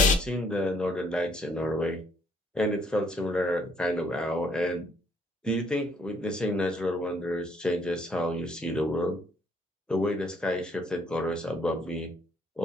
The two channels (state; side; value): normal; both; correlation 0.66